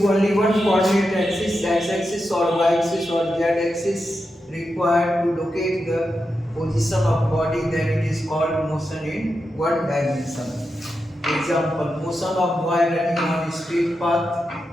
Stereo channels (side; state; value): both; normal; correlation 0.88